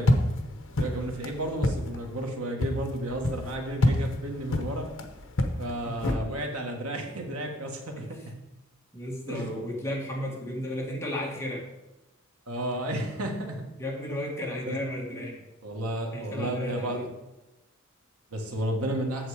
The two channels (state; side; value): normal; both; correlation 0.62